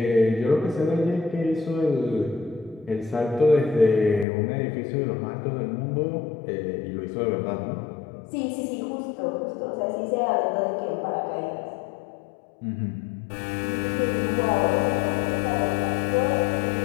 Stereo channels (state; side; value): drops out; right; at 4.2 s